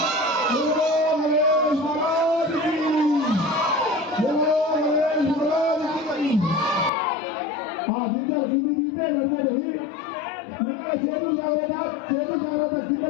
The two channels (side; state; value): right; drops out; at 6.9 s